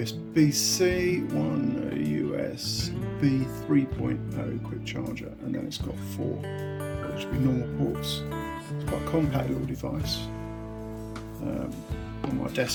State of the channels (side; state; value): both; identical; correlation 1.00